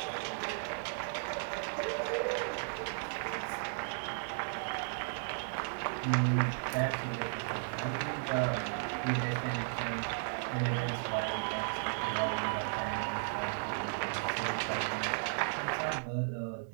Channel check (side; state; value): left; silent; digital silence